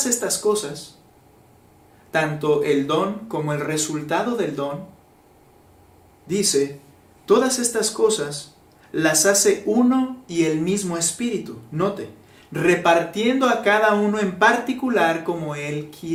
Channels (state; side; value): identical; both; correlation 1.00